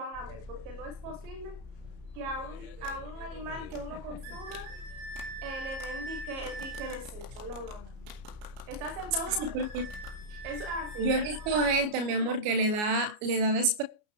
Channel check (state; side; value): late; left; 33 ms